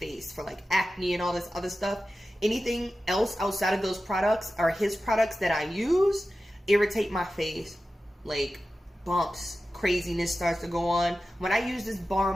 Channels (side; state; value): both; normal; correlation 0.94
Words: for like acne and all this other stuff. Anything else outside of those products or his products that I use irritate my face. Like bumps, craziness starts to go on. When I use this bar